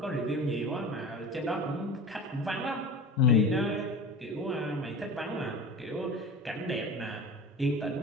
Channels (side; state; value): both; normal; correlation 0.34